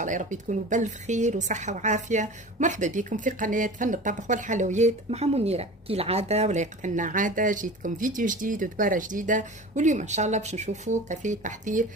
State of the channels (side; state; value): both; normal; correlation 0.36